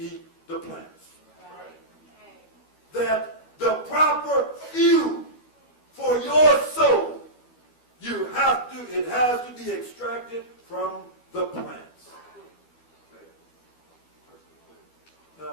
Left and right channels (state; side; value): late; right; 12 ms